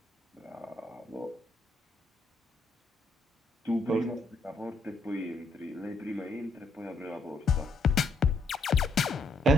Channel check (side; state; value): right; quieter; 3.1 dB